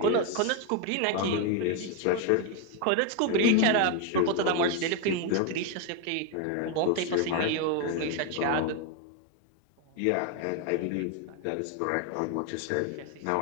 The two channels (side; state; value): both; different; correlation 0.01